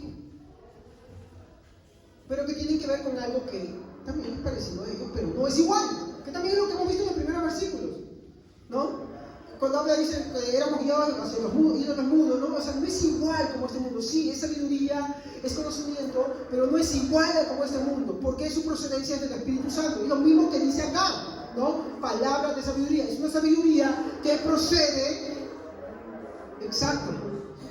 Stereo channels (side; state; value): both; identical; correlation 1.00